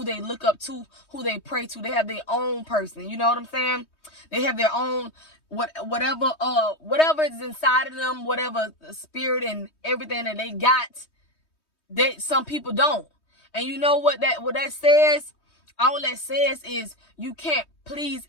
they look up to, who they pray to. They have their own person. You know what I'm saying? They have their own whatever is inside of them, whatever spirit and everything that they got, that some people don't. And you know what that says? All that says is you can't please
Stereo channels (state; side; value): late; right; 3.2 ms